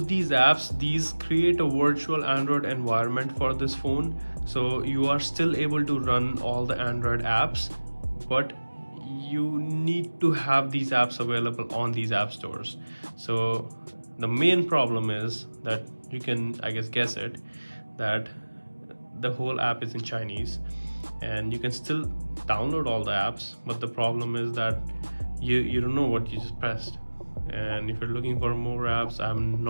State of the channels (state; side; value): inverted; both; correlation -1.00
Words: these apps, these create a virtual Android environment for this phone. So you are still able to run all the Android apps, but you need to have these apps available on these app stores. So the main problem is that you can, I guess it, that the whole app is in Chinese, and you can still download all the apps, but the problem is that you don't know what you just pressed. And if you're looking for more apps, I'm